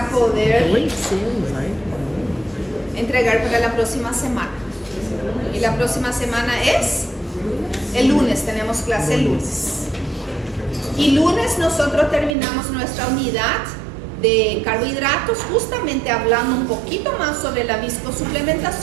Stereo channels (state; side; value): drops out; left; at 12.4 s